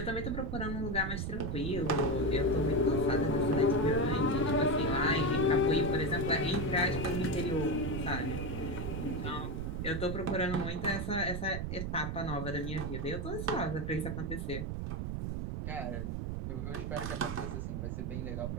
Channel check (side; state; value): right; noise; rumble, 3 dB below the sound